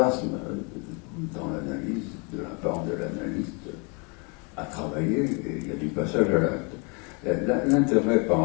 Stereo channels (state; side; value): quieter; right; 32.8 dB